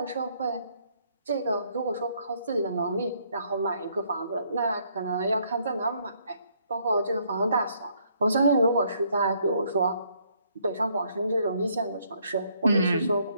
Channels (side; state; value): both; inverted; correlation -0.69